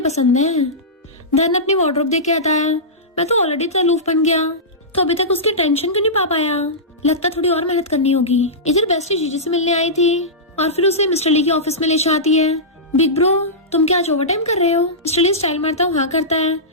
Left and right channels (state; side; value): normal; both; correlation -0.16